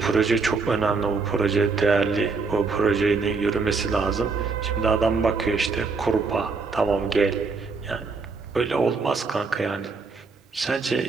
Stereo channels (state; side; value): quieter; left; 4.4 dB